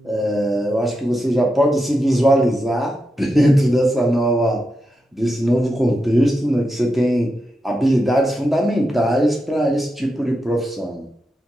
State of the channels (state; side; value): normal; both; correlation 0.87